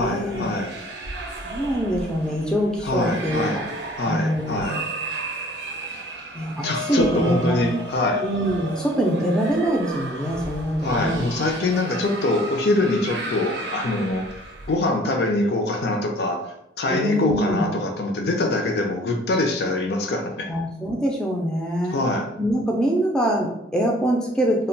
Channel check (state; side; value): normal; both; correlation 0.52